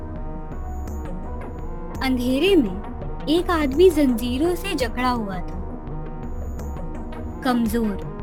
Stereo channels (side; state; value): both; identical; correlation 1.00